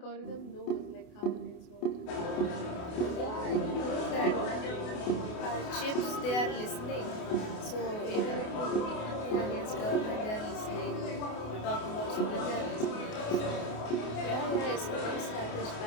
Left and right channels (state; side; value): late; right; 28 ms